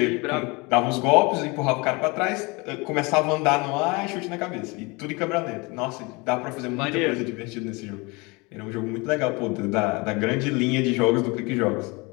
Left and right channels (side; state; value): right; quieter; 26.6 dB